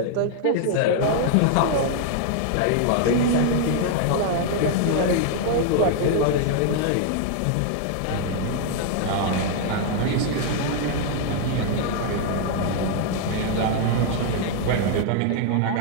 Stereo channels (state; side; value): different; both; correlation 0.00